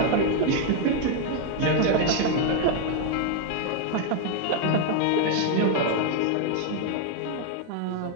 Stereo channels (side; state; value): both; different; correlation 0.00